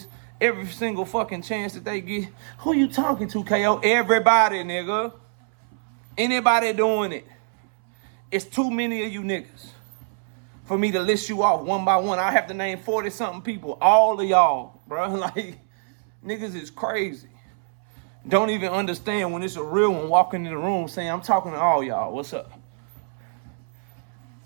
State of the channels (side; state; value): left; silent; 62 dB below the other